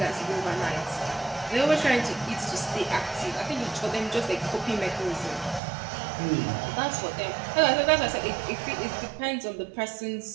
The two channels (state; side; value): drops out; left; at 5.6 s